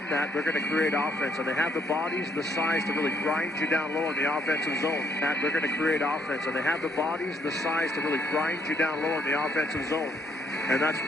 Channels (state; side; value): normal; both; correlation 0.69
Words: that, they're going to create offense. And they have the bodies, the size to really grind you down low in the offensive zone. That they're going to create offense. And they have the bodies, the size to really grind you down low in the offensive zone. And that's